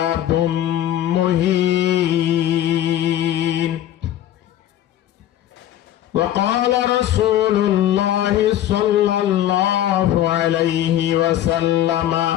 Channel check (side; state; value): right; quieter; 12.1 dB